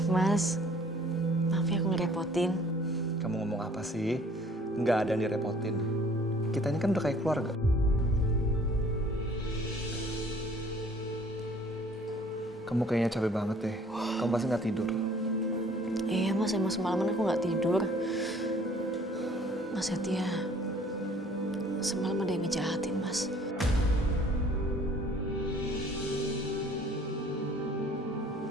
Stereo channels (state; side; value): normal; both; correlation 0.55